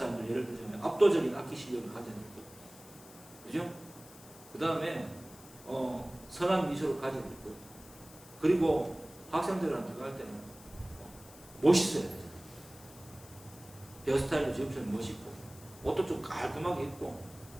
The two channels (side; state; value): left; noise; hiss, 20 dB below the sound